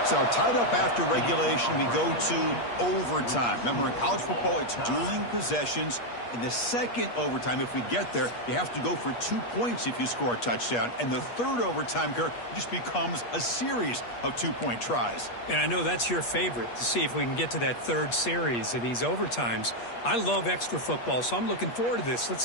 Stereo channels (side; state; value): right; late; 8.4 ms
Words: So tied up after regulation, we go to overtime. Remember, in college football, it's dueling possessions. In the second overtime, if we get there, you have to go for 2 points if you score a touchdown. And the third overtime, Kirk, just becomes a series of 2-point tries. And I know that's your favorite, to see if we can get to that third series of these overtimes. I love extra football, so I'm looking forward to this. Let's